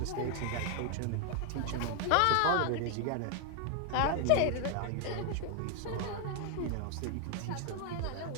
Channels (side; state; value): both; different; correlation 0.00